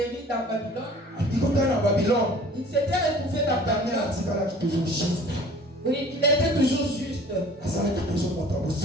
dans Babylone. abikota na Babylone Il s'était retrouvé dans Daniel Babylone. atikalaki toujours juste Oui, il était toujours juste. azalaki toujours moto ya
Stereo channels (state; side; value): normal; both; correlation 0.48